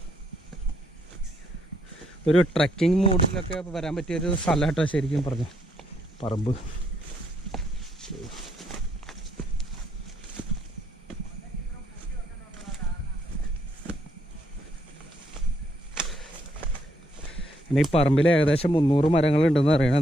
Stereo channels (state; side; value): normal; both; correlation 0.73